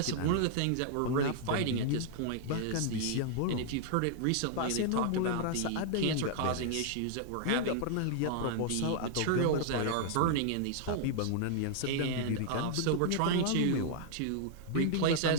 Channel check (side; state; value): both; different; correlation -0.01